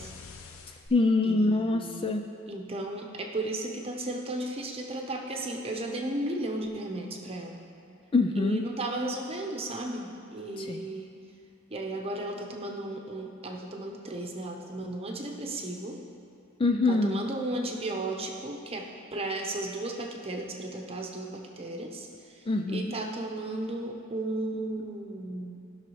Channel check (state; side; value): normal; both; correlation 0.60